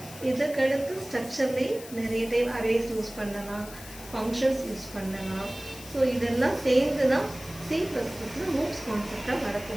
இதுக்கடுத்து ஸ்ட்ரக்சர்லேயே நிறைய டைப் அரேஸ் யூஸ் பண்ணலாம், ஃபங்க்ஷன்ஸ் யூஸ் பண்ணலாம். ஸோ இதெல்லாம் சேர்ந்து தான் C++ல மூவ்ஸ் கான்செப்டாக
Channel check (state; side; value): noise; left; hiss, 16 dB below the sound